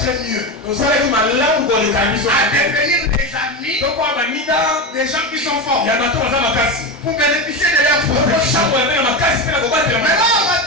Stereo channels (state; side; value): normal; both; correlation 0.18